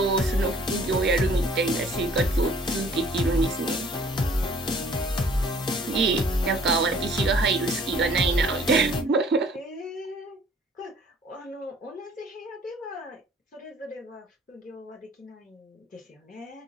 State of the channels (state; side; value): normal; both; correlation 0.56